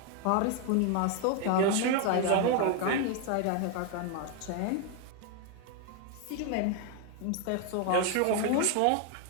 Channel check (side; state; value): both; different; correlation 0.01